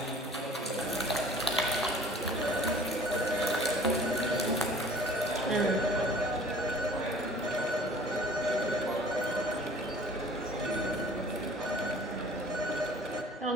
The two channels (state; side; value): normal; both; correlation 0.48